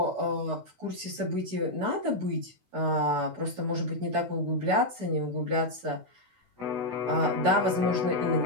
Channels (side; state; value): left; late; 16 ms